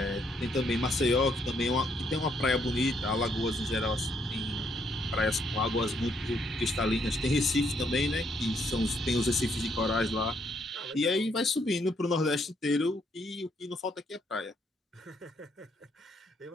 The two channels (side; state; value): both; normal; correlation 0.72